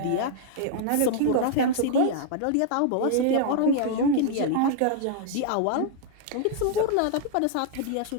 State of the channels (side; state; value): both; different; correlation -0.01